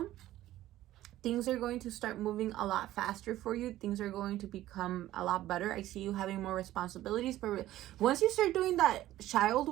things are going to start moving a lot faster for you. Things are going to become a lot better. I see you having more responsibilities. But once you start doing that child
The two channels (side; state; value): left; quieter; 14.5 dB